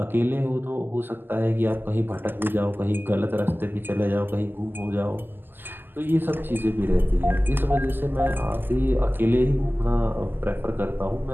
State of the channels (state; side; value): late; left; 0.093 ms